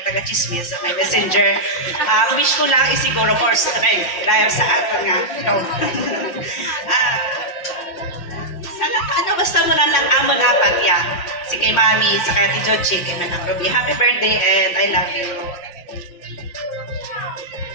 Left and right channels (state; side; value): late; right; 5.8 ms